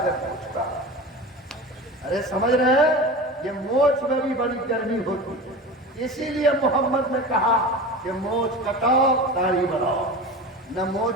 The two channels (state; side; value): normal; both; correlation 0.31